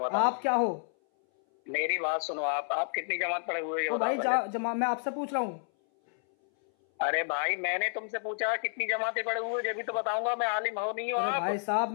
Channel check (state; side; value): silent; right; 58 dB below the other